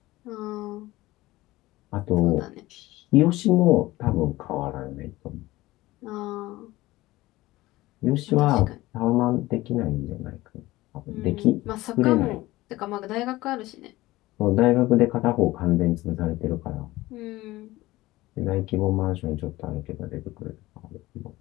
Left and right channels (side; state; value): right; quieter; 18.3 dB